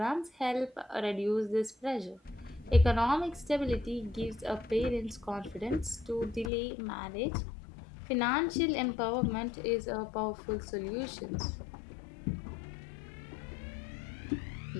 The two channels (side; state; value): right; drops out; at 6.5 s